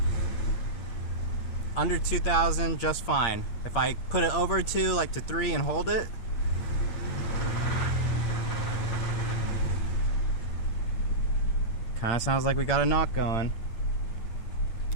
Under 2,000, just fine. If I put it over 2, like to 3 and hold it, kind of sounds like we got a knock going.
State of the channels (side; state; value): right; late; 8.7 ms